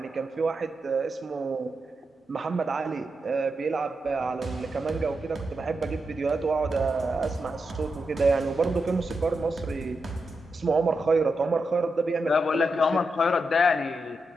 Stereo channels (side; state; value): both; normal; correlation 0.86